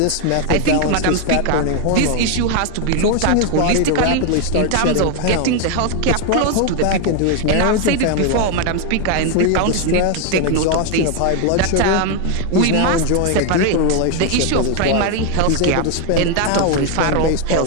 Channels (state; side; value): different; both; correlation 0.01